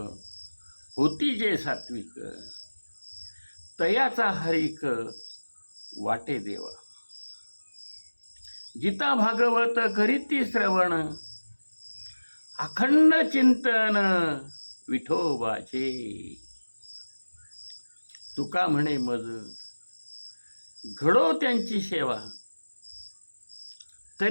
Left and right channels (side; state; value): both; inverted; correlation -1.00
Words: होती जे सात्विक, तयाचा हरिक वाटे देवा, गीता भागवत करीती श्रवण, अखंड चिंतन विठोबाचे, तुका म्हणे मज घडो त्यांची सेवा,